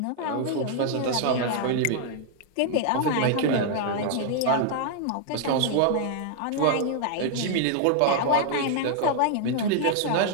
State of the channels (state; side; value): different; both; correlation 0.00